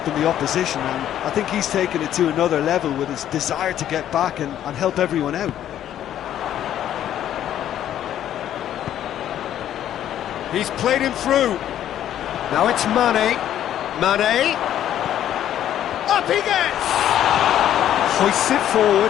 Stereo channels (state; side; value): quieter; right; 11.2 dB